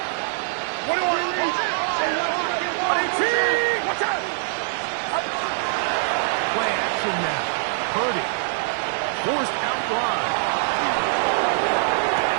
Play action now. Purdy. Forced out wide.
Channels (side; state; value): left; silent; digital silence